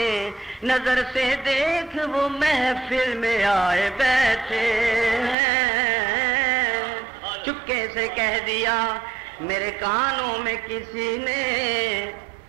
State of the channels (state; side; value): drops out; left; at 5.4 s